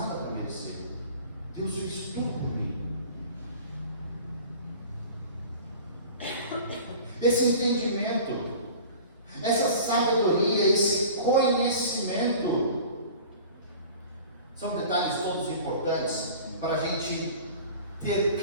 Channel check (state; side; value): inverted; both; correlation -0.41